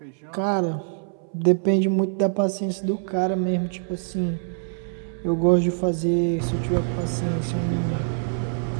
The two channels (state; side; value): silent; left; 62 dB below the other